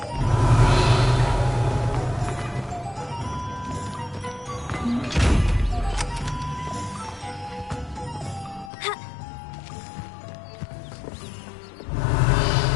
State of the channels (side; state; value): right; drops out; at 8.7 s